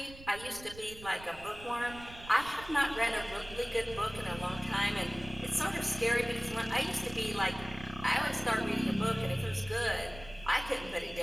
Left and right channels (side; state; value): right; noise; rumble, 17 dB below the sound